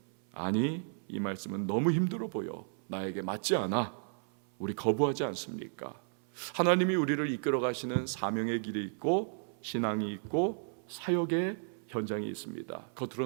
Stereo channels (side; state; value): left; silent; 56 dB below the other